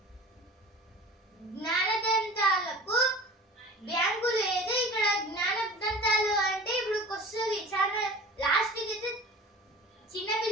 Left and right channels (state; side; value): normal; both; correlation 0.40